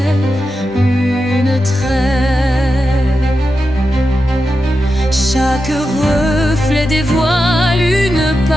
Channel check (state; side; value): normal; both; correlation 0.89